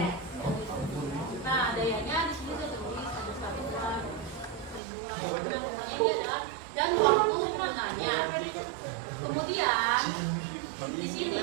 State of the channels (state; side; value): drops out; left; at 4.8 s